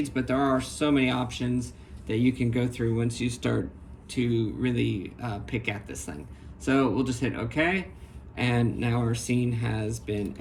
but there are so many options that you can go through once you start to really pick at this thing. So we'll just hit OK, and now our scene has been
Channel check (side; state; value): both; identical; correlation 1.00